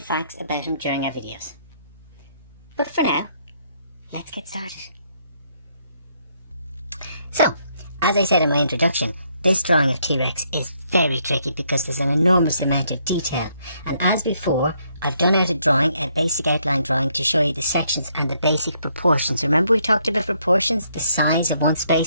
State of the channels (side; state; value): both; inverted; correlation -0.71